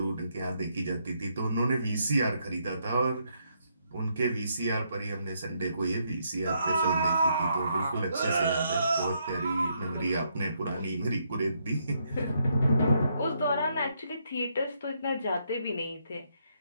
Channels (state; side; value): inverted; both; correlation -0.75